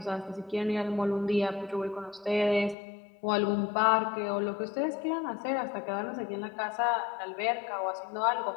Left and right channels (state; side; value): drops out; right; at 2.8 s